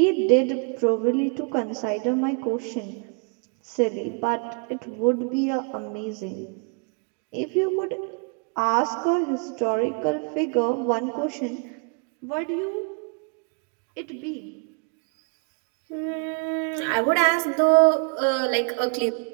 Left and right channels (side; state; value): left; quieter; 36.9 dB